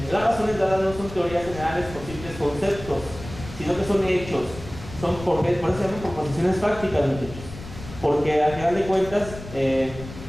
Las razones dadas no son teorías generales o simples conceptos, sino que son hechos, por eso se llaman proposiciones fácticas, muchachos, porque al final de cuentas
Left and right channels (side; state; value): left; noise; rumble, 13 dB below the sound